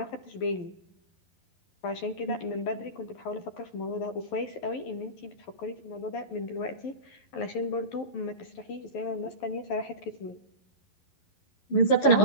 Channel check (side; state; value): right; late; 11 ms